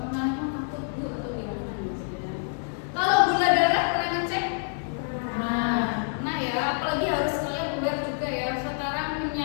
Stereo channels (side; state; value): right; silent; digital silence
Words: pernah takut bu atau gimana gitu ya. Kalau gula darah pernah ngecek? Nah ya, apalagi harus kalian aware juga ya, sekarang